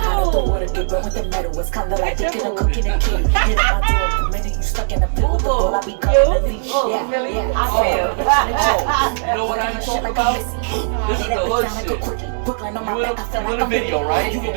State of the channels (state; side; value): silent; left; 67 dB below the other